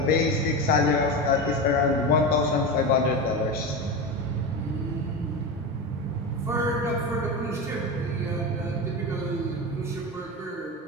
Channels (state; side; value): normal; both; correlation 0.21